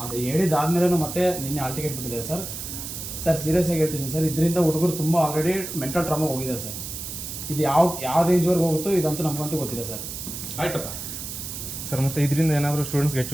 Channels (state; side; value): noise; right; hiss, 8 dB below the sound